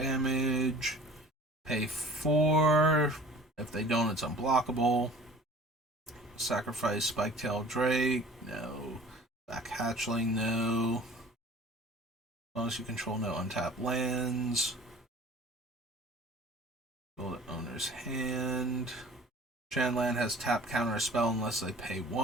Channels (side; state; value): both; normal; correlation 0.46